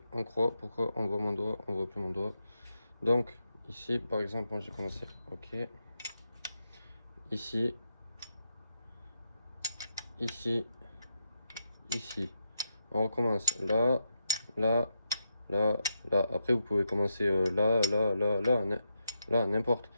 en croix. Pourquoi on voit mon doigt, on voit plus mon doigt. Donc, ici, par exemple, moi j'ai commencé, ok. Ici, ici, ici. On recommence là, là, là, là. Après, vous pouvez commencer là, là, là, là, là, n'importe.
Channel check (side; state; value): both; inverted; correlation -0.83